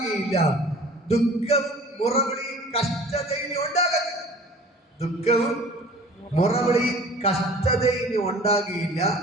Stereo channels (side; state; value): both; normal; correlation 0.46